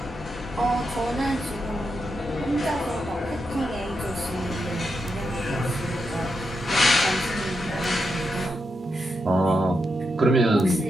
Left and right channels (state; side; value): normal; both; correlation 0.85